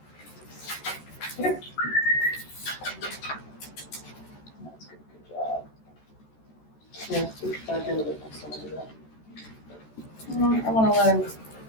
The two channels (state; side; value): late; right; 14 ms